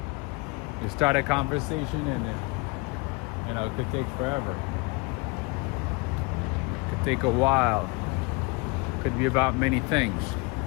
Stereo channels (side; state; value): right; quieter; 27.6 dB